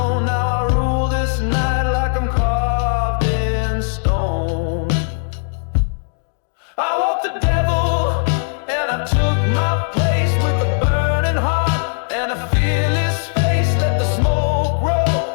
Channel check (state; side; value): silent; right; digital silence